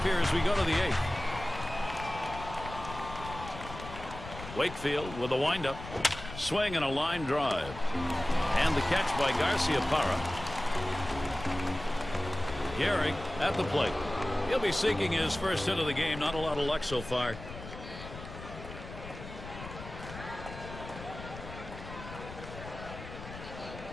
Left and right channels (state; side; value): noise; left; rumble, 12 dB below the sound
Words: here as we go to the 8th. Wakefield with a windup. Swing and a line drive. And the catch by Garcia-Parra. Gehrig at the plate. He'll be seeking his first hit of the game. Not a lot of luck so far.